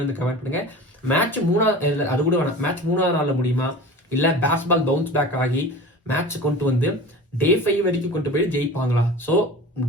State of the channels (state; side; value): normal; both; correlation 0.36